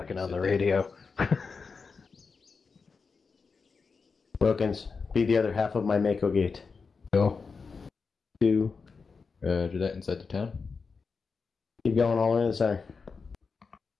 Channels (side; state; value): right; quieter; 4.9 dB